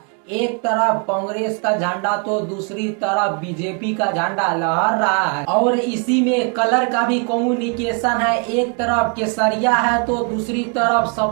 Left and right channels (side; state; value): left; quieter; 36.8 dB